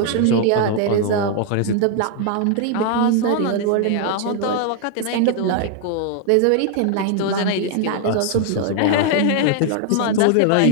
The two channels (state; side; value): different; both; correlation 0.00